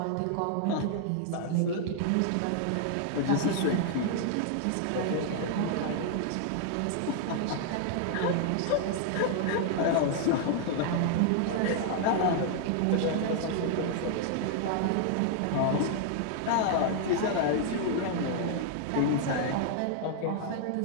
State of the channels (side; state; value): both; different; correlation 0.00